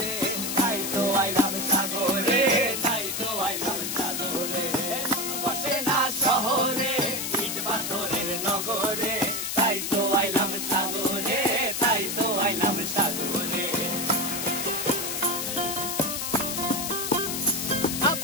তাই তো আইলাম সাগরে, তাই তো আইলাম সাগরে। মন বসে না শহরে, ইট পাথরের নগরে, তাই তো আইলাম সাগরে, তাই তো আইলাম সাগরে।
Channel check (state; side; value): noise; left; hiss, 2 dB below the sound